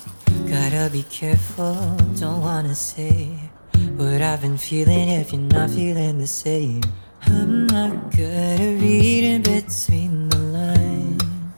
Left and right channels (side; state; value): both; inverted; correlation -1.00